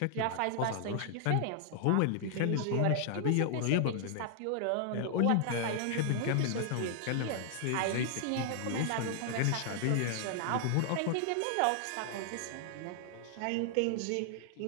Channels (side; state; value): both; different; correlation 0.00